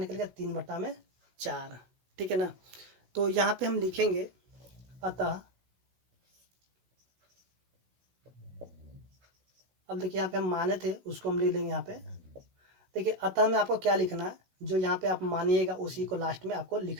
गया 3/4। ठीक है ना, तो यहाँ पे हम लिखेंगे अतः, अब देखिए यहाँ पे हम माने थे उसको हम लिख लेंगे यहाँ पे। देखिए अतः में आपको क्या लिखना है, जो यहाँ पे आप मानिएगा उसी को लास्ट में आपको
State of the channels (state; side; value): late; left; 16 ms